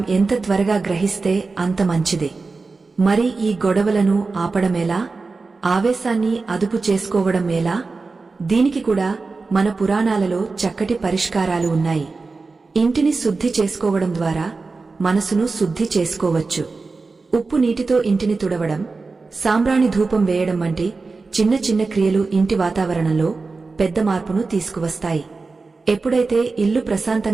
ఎంత త్వరగా గ్రహిస్తే అంత మంచిదే. మరి ఈ గొడవలను ఆపడమేలా? ఆవేశాన్ని అదుపు చేసుకోవడం ఎలా? దీనికి కూడా మన పురాణాలలో చక్కటి పరిష్కారాలు ఉన్నాయి. ఇంటిని శుద్ధి చేసుకోవడం ద్వారా మనసును శుద్ధి చేసుకోవచ్చు. ఉప్పు నీటితో ఇంటిని తుడవడం, సాంబ్రాణి ధూపం వేయడం వంటి చిన్న చిన్న క్రియలు ఇంటి వాతావరణంలో పెద్ద మార్పును తీసుకువస్తాయి. ఎప్పుడైతే ఇల్లు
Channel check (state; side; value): quieter; left; 4.0 dB